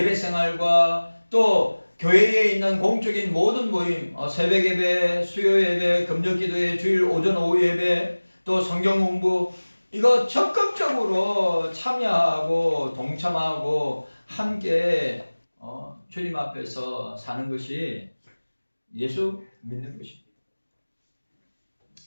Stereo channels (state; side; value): inverted; both; correlation -1.00